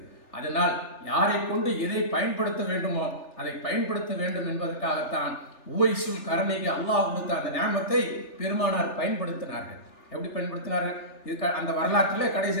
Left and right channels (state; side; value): late; right; 3.4 ms